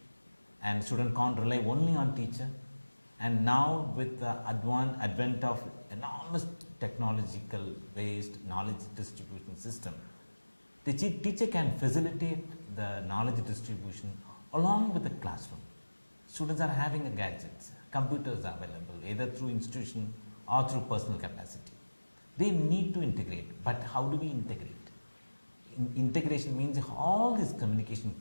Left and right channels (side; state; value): both; inverted; correlation -1.00